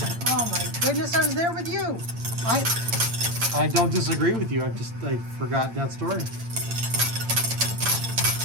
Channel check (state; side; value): late; left; 8.8 ms